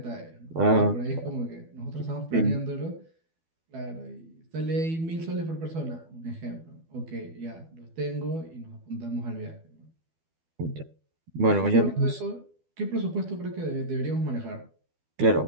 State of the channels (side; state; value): left; late; 12 ms